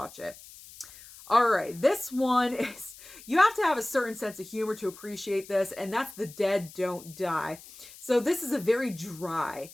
it. All right, this one is, you have to have a certain sense of humor to appreciate this, and that's The Dead Don't Die. So this is a very dry,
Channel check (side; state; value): left; noise; hiss, 19 dB below the sound